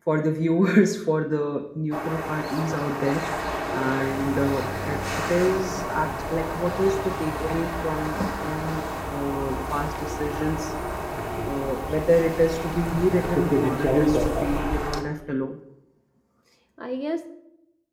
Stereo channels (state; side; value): identical; both; correlation 1.00